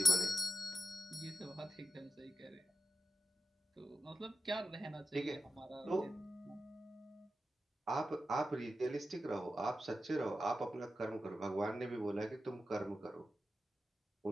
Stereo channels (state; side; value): normal; both; correlation 0.90